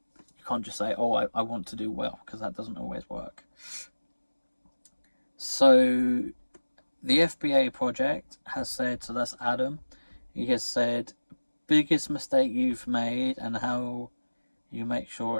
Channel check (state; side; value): inverted; both; correlation -1.00